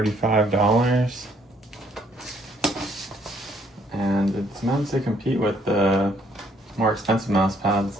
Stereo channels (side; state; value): both; normal; correlation 0.66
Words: And it's meant to compete with the more expensive mouse pads